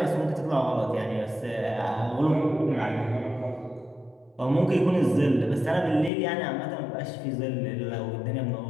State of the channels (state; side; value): drops out; right; at 6.1 s